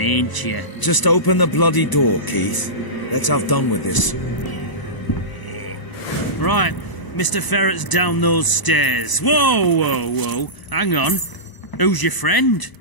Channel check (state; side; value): late; right; 1.0 ms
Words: you? Just open the bloody door, Keith. Let's have done with this. Right, Mr. Ferret's down those stairs. Whoa, whoa, whoa. Hang on. Who's your friend?